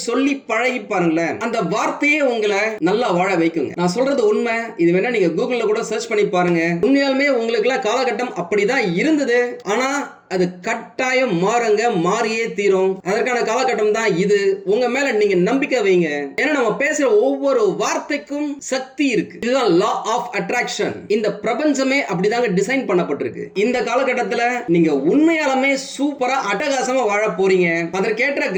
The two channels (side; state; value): both; identical; correlation 1.00